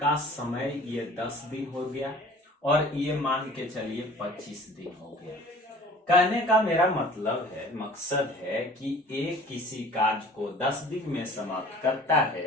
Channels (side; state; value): both; normal; correlation 0.47